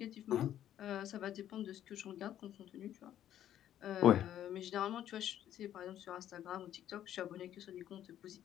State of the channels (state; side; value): quieter; right; 11.3 dB